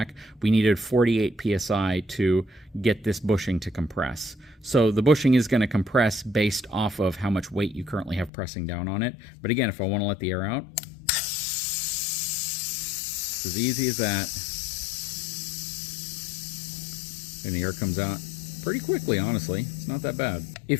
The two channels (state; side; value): drops out; right; at 8.3 s